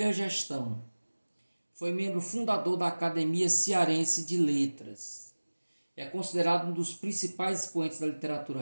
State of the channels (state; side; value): inverted; both; correlation -1.00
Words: gestão. Foi membro fundador da Academia Cearense de Letras. É considerado um dos principais expoentes da literatura